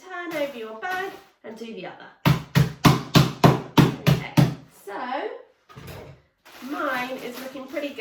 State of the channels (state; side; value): identical; both; correlation 1.00